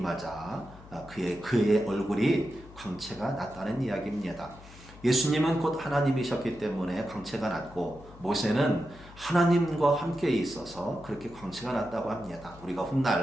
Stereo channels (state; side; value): noise; left; hum, 19 dB below the sound